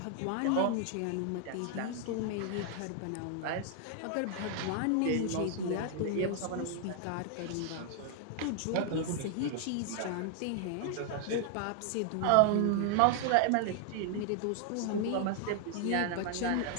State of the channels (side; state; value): both; different; correlation 0.00